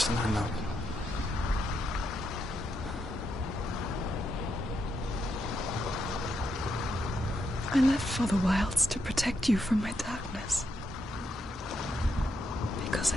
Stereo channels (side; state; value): both; normal; correlation 0.81